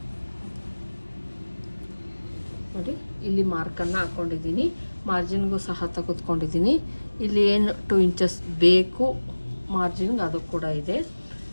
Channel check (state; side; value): inverted; both; correlation -1.00